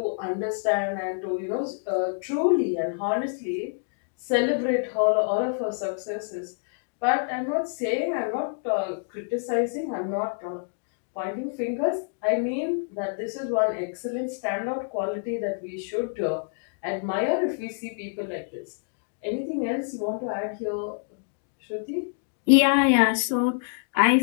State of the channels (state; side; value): silent; right; digital silence